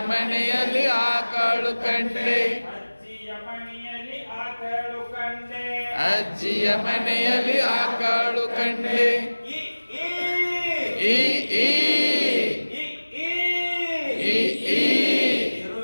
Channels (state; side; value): inverted; both; correlation -1.00